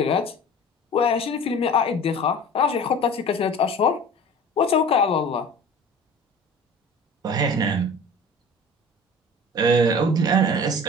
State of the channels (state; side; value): normal; both; correlation 0.41